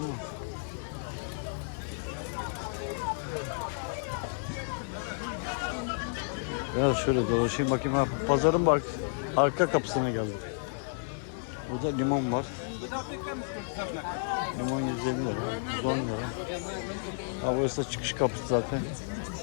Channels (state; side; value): silent; right; digital silence